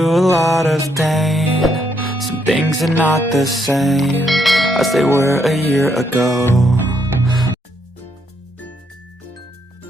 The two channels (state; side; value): normal; both; correlation 0.74